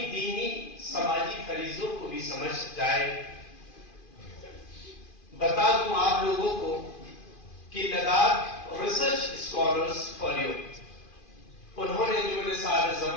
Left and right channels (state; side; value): late; right; 2.5 ms